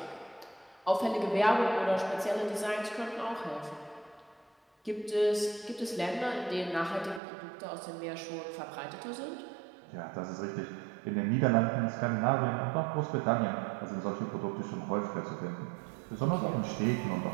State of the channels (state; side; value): drops out; left; at 7.2 s